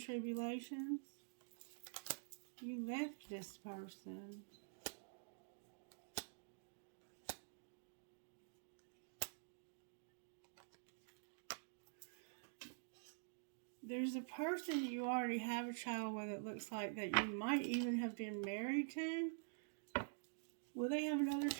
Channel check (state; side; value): silent; left; digital silence